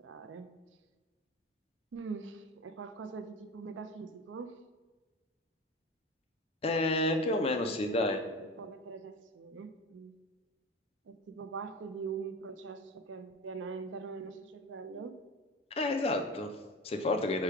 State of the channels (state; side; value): normal; both; correlation 0.30